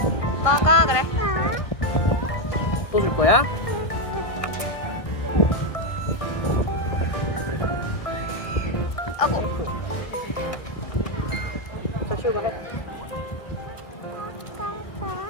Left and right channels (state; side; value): late; right; 1.8 ms